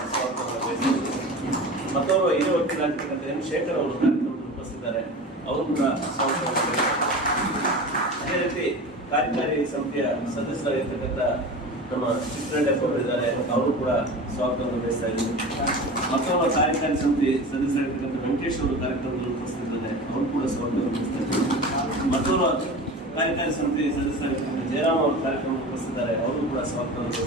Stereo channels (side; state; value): both; normal; correlation 0.33